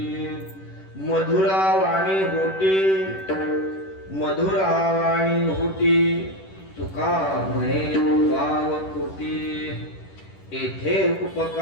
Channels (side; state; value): right; late; 10 ms